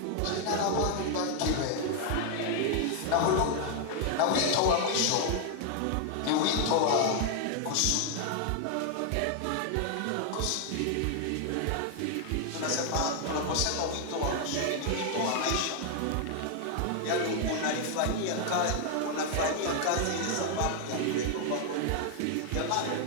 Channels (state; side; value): different; both; correlation 0.00